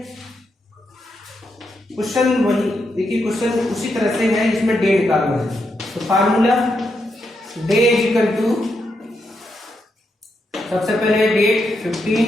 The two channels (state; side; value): normal; both; correlation 0.82